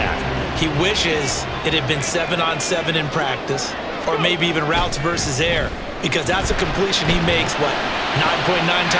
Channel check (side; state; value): both; identical; correlation 1.00